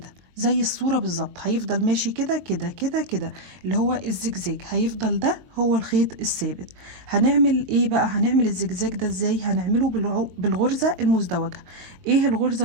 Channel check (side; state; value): left; late; 22 ms